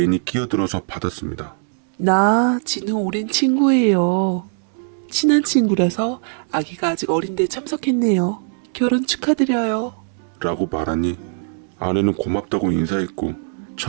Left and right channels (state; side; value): silent; left; digital silence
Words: 끼어들어서 받았습니다. 나 진우 오랜 친구예요. 친한 친구라서 아기가 아직 어린데 참석했네요. 결혼 축하드려요. 라고 말하니 아내는 고맙다고 인사했고